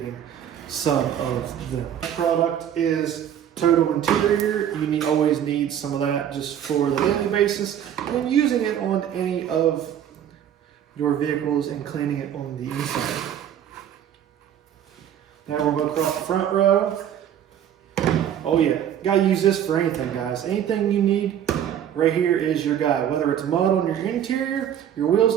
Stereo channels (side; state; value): left; quieter; 9.9 dB